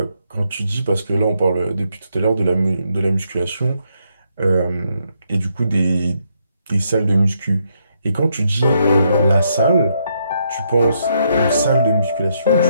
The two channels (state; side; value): inverted; both; correlation -0.76